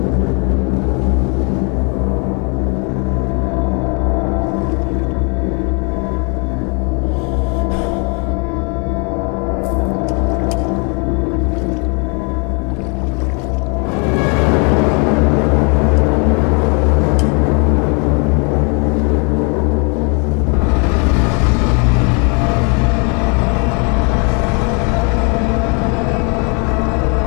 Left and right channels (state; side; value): quieter; right; 34.8 dB